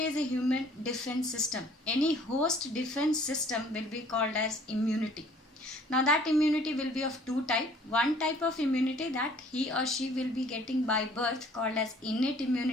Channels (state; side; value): normal; both; correlation 0.55